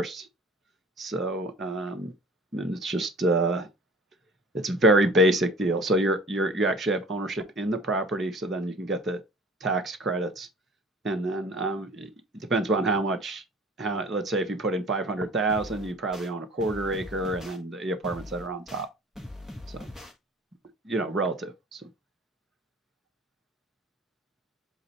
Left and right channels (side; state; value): both; normal; correlation 0.46